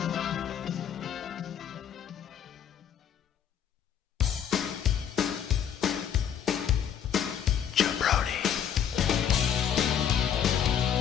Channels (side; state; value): right; quieter; 9.0 dB